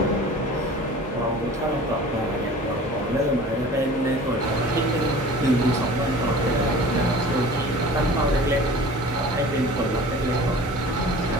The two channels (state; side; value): normal; both; correlation 0.43